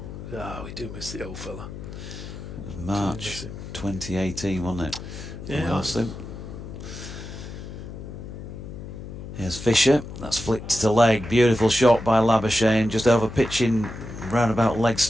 We do miss the old fella. It was March 2018, wasn't it? Yeah. Here's Fisher, that's flicked to leg, beautiful shot by Labuschagne, just over pitching roundabout leg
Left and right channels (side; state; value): left; noise; hum, 11 dB below the sound